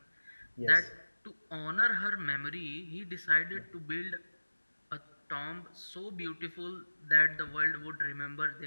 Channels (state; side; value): inverted; both; correlation -1.00